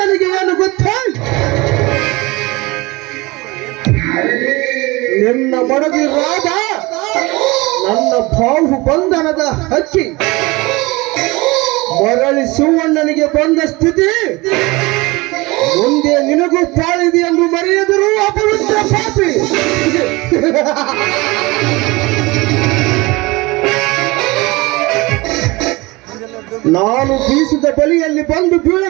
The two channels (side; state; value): left; quieter; 23.0 dB